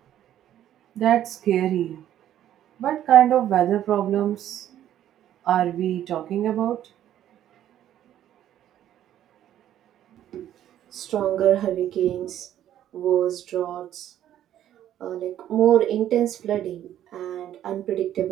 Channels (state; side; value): quieter; left; 11.5 dB